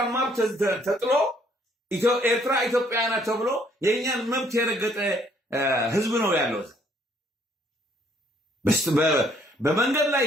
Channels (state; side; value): normal; both; correlation 0.65